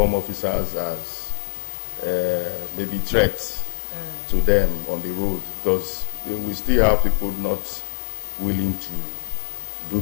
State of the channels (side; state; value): right; silent; 59 dB below the other